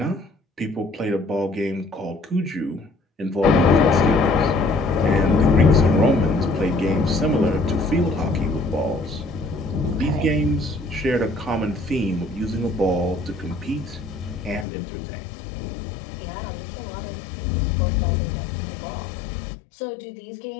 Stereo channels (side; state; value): right; drops out; at 14.7 s